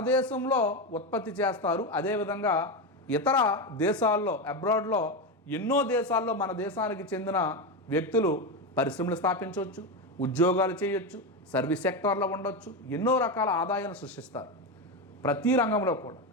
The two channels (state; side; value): normal; both; correlation 0.14